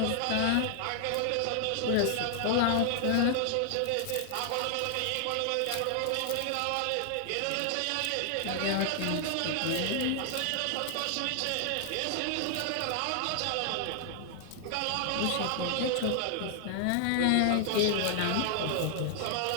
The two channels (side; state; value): both; different; correlation 0.00